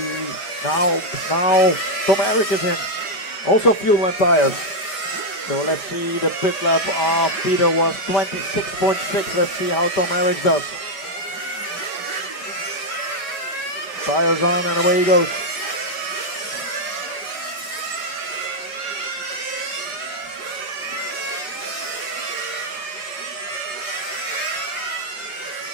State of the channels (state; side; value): late; right; 5.1 ms